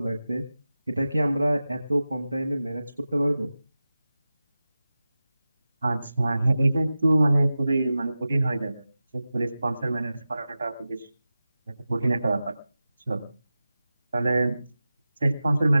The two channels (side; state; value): both; inverted; correlation -0.95